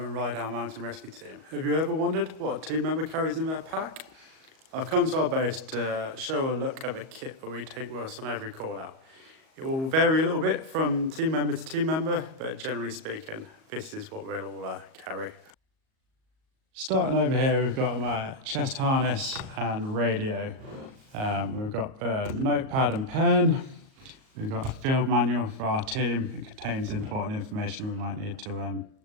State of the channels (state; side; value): late; left; 38 ms